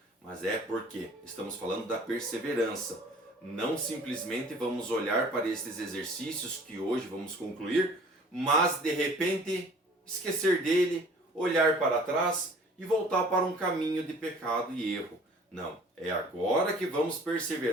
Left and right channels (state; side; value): normal; both; correlation 0.50